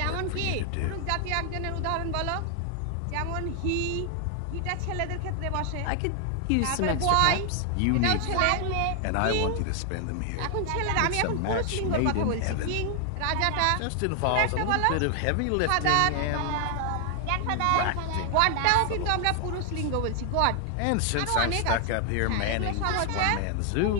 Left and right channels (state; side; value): different; both; correlation 0.00